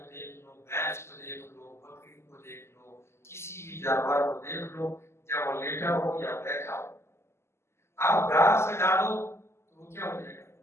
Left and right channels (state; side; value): late; right; 0.13 ms